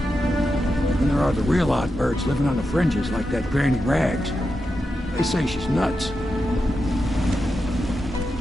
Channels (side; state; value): both; normal; correlation 0.88